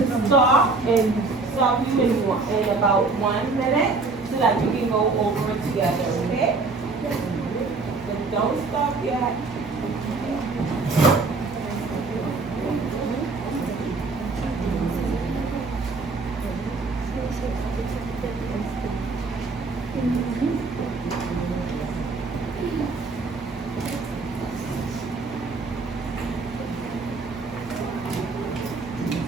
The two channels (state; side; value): quieter; left; 3.9 dB